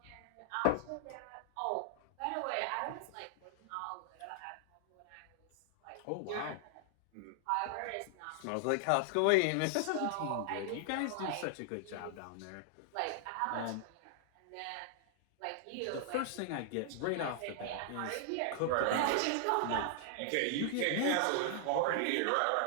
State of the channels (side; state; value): both; different; correlation 0.00